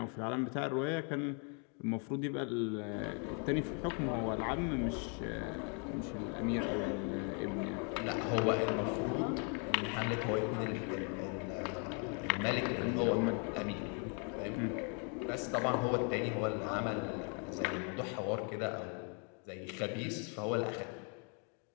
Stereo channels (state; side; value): quieter; right; 39.0 dB